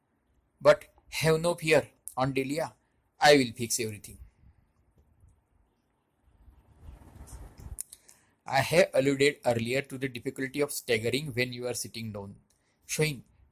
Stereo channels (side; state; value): both; identical; correlation 1.00